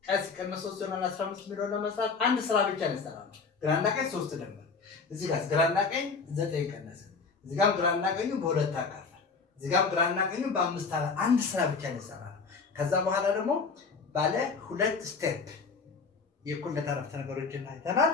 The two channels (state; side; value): quieter; right; 4.8 dB